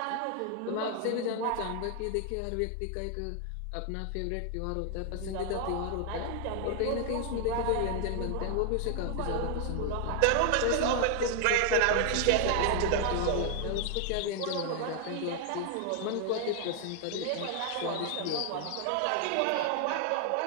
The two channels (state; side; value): different; both; correlation 0.00